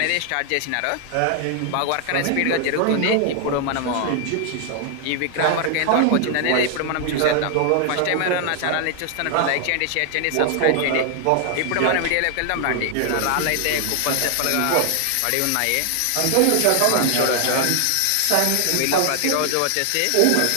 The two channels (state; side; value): different; both; correlation 0.00